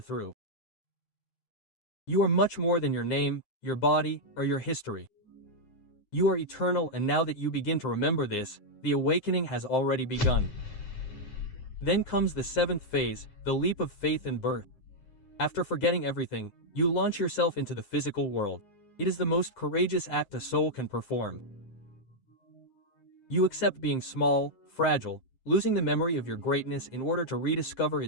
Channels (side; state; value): right; late; 9.7 ms